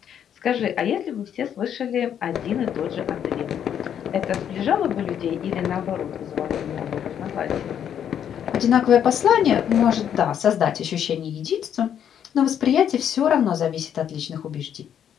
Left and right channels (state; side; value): quieter; right; 9.2 dB